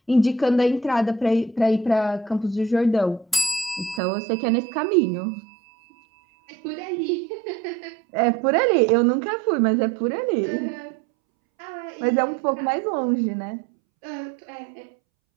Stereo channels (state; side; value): drops out; left; at 4.0 s